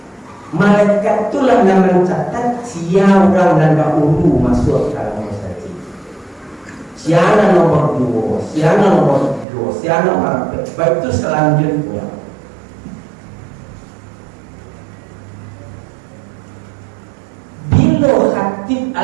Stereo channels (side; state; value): left; drops out; at 9.5 s